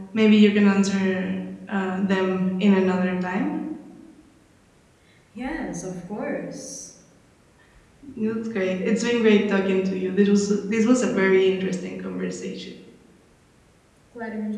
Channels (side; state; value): both; identical; correlation 1.00